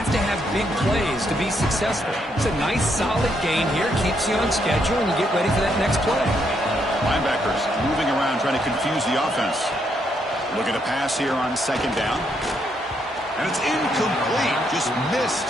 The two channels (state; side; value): normal; both; correlation 0.76